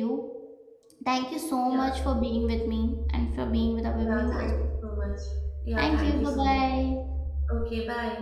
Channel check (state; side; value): identical; both; correlation 1.00